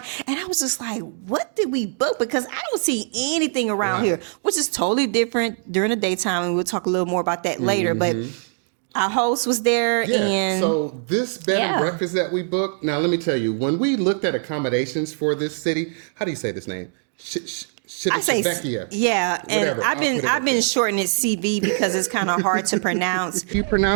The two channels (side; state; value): left; silent; digital silence